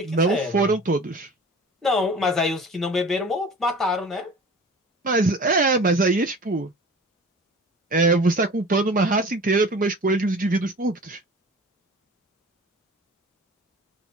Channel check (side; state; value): both; normal; correlation 0.40